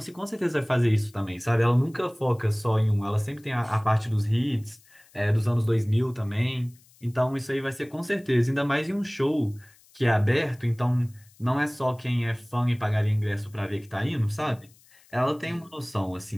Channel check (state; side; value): noise; left; hiss, 29 dB below the sound